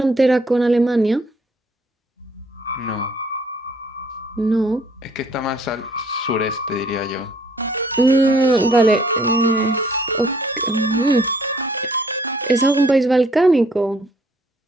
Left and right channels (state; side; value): normal; both; correlation 0.61